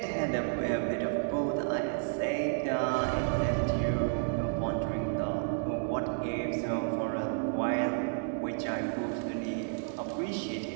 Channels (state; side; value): silent; left; digital silence